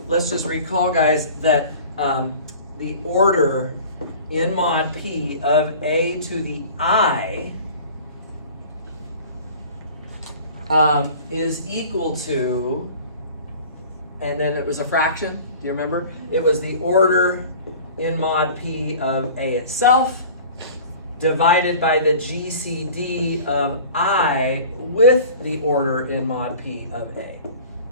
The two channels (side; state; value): both; inverted; correlation -0.43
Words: guys, that the order in mod P of a to the I is equal to, and then it was a fraction, do you remember? It was the order in mod P of A itself divided by the GCD of I with the order in mod P of A